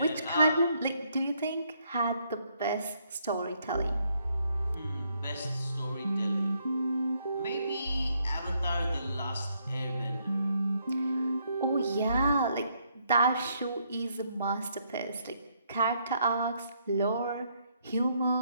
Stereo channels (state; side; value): inverted; both; correlation -0.72